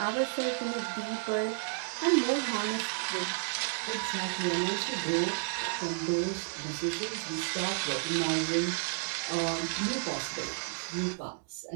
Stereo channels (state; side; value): silent; left; digital silence